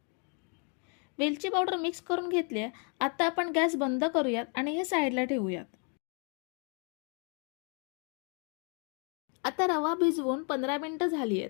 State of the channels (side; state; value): right; quieter; 38.8 dB